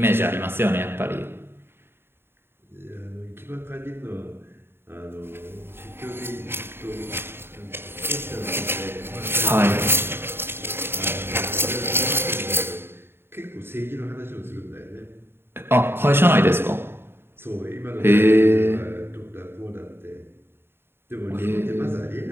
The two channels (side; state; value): left; late; 0.11 ms